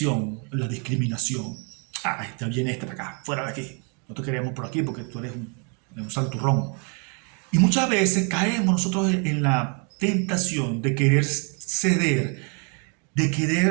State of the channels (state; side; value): quieter; left; 37.3 dB